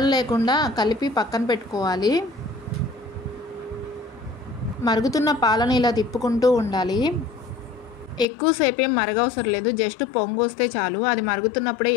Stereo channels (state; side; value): drops out; right; at 8.2 s